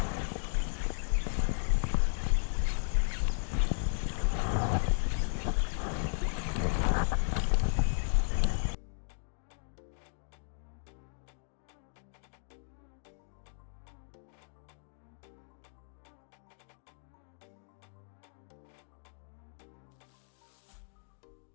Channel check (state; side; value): silent; right; digital silence